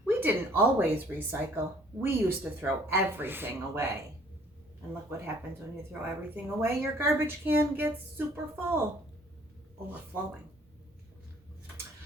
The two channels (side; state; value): both; normal; correlation 0.57